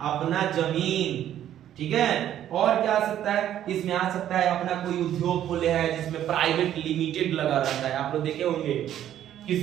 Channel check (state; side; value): quieter; left; 11.3 dB